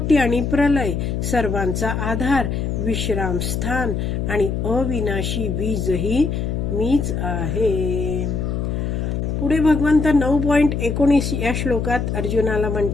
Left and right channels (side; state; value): left; noise; hum, 1 dB below the sound